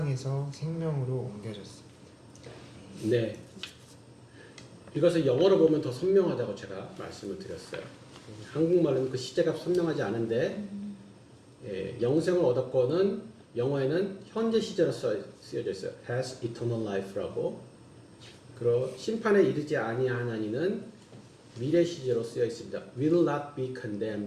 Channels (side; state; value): both; identical; correlation 1.00